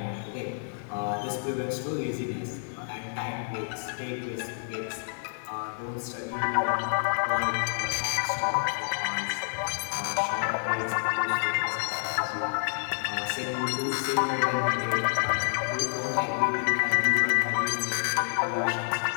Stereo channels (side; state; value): right; silent; 59 dB below the other